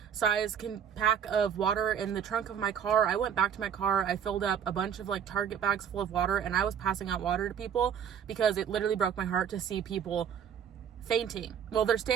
size pack of water in the trunk of my car. I went back to my car. I filled up a bunch of like Target bags full of water, and I was passing out water to people because it literally broke my heart to see people fainting. Well, they're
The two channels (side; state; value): left; quieter; 8.1 dB